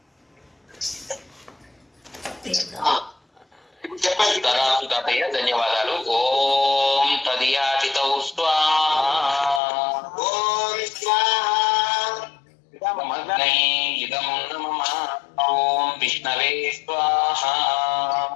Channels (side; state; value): right; drops out; at 9.6 s